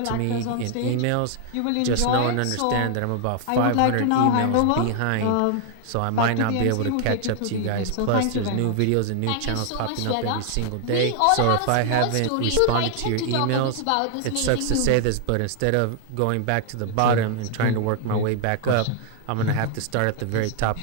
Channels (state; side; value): different; both; correlation 0.00